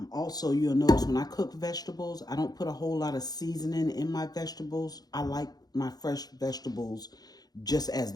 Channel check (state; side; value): late; right; 0.19 ms